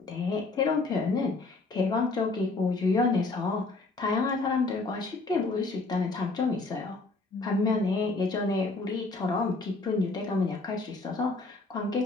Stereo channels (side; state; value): right; quieter; 3.5 dB